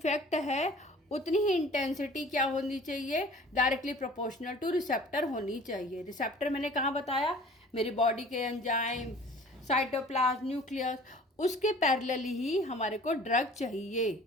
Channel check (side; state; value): both; normal; correlation 0.48